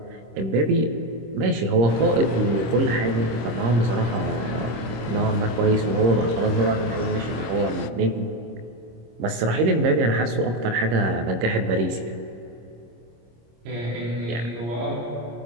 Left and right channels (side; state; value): left; late; 26 ms